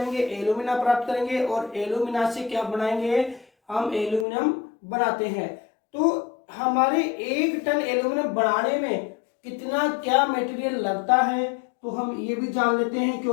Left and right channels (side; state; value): right; drops out; at 4.2 s